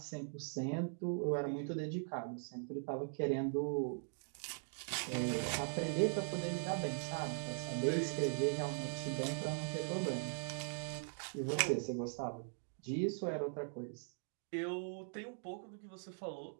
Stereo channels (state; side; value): silent; left; digital silence